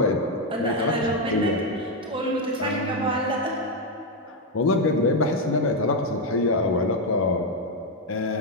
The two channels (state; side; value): normal; both; correlation 0.04